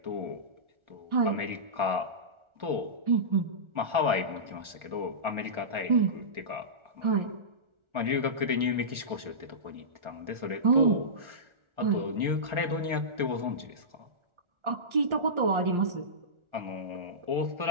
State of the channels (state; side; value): late; left; 1.4 ms